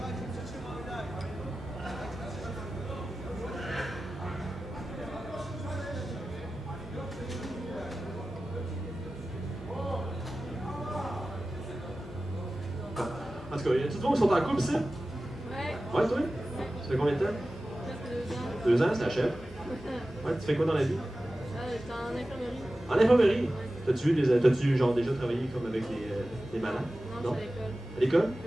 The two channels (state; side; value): normal; both; correlation 0.95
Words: tout cas, y a-tu de qui sont en couple, ici? Ouais. Ouais, toi? Ça fait combien de temps? 2 ans, c'est la chef. Ouais, tu fais quoi dans la vie? J'étais en infirmerie. En infirmerie? T'as-tu genre déjà travaillé comme avec des malades? Non, c'est à l'école. À l'école?